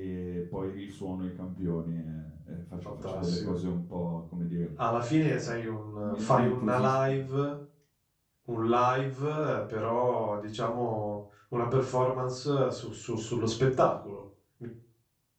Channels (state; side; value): identical; both; correlation 1.00